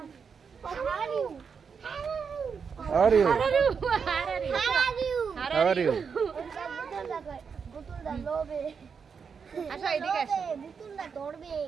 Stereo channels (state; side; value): quieter; left; 6.1 dB